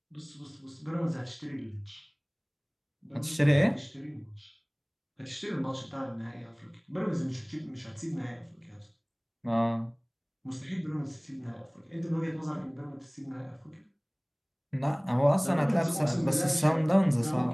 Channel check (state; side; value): identical; both; correlation 1.00